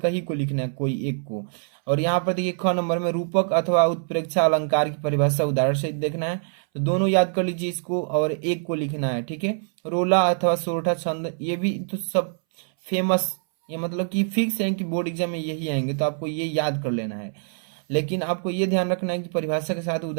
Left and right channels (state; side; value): silent; left; 62 dB below the other